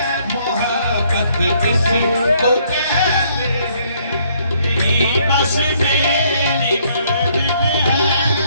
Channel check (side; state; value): both; inverted; correlation -0.66